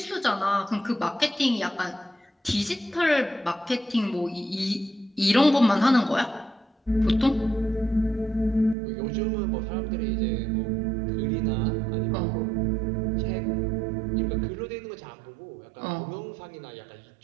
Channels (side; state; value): left; drops out; at 8.8 s